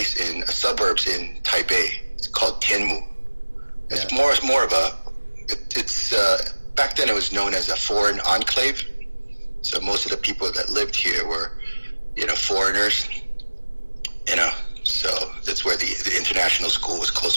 in suburbs in Taipei. It's called Tianmu. It's more of it's back then it was known as a foreign enclave. So most of the people that lived here were, foreigners. So that's where the international school was close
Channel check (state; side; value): inverted; both; correlation -1.00